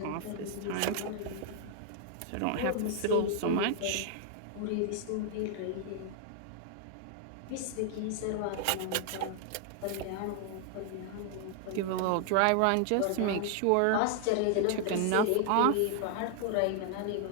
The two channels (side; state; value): both; different; correlation 0.00